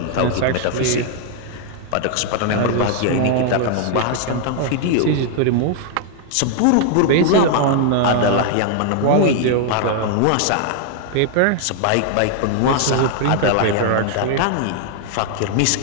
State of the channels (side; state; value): both; different; correlation 0.00